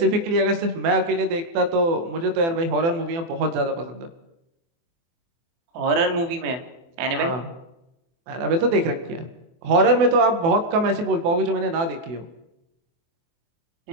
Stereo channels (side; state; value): left; late; 24 ms